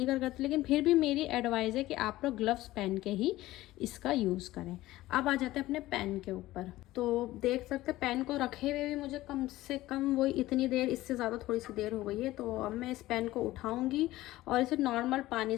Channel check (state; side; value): quieter; right; 16.7 dB